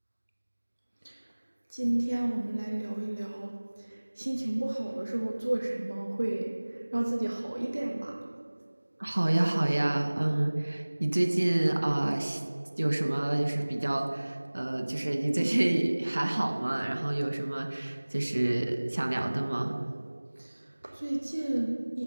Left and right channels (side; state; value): both; inverted; correlation -1.00